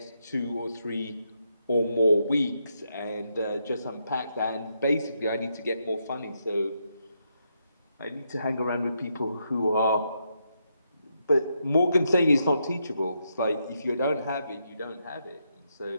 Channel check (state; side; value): inverted; both; correlation -0.80